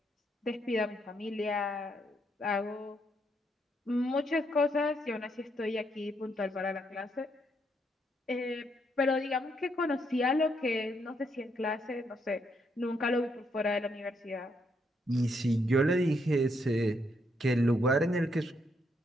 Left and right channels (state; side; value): normal; both; correlation 0.75